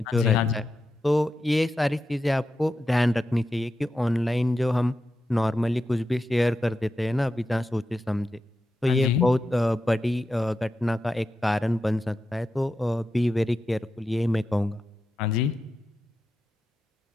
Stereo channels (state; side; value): normal; both; correlation 0.89